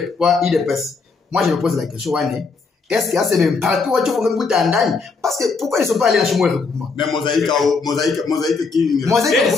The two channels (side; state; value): right; quieter; 4.5 dB